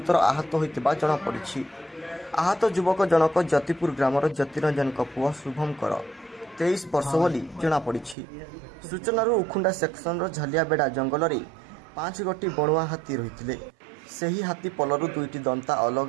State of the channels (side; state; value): left; drops out; at 8.2 s